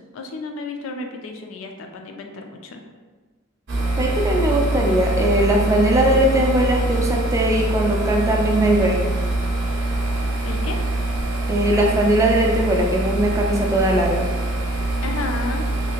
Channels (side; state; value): both; normal; correlation 0.55